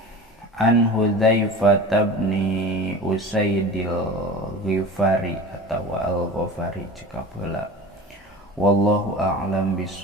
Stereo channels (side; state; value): both; normal; correlation 0.35